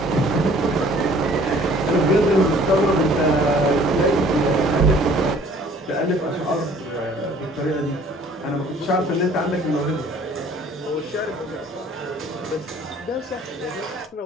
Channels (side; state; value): both; normal; correlation 0.54